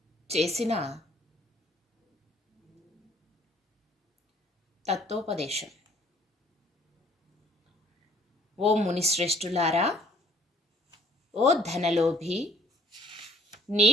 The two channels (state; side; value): normal; both; correlation 0.57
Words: చేసిన తత్వోపదేశం. ఓ మునిశ్రేష్ఠులారా, ఓ ధనలోభి,